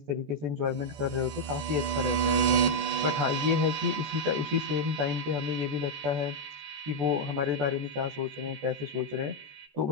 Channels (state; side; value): late; left; 14 ms